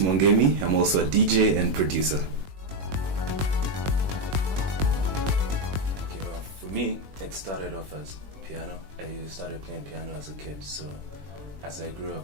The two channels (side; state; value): left; late; 21 ms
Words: I'm also a DJ and producer. Okay, well, for me, it started off as piano. I started playing piano as a kid, so as I grew